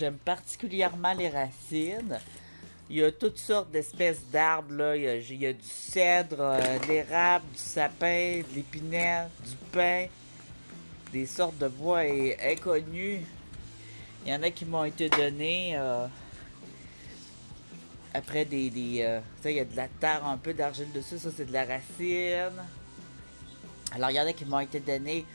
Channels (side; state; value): both; inverted; correlation -1.00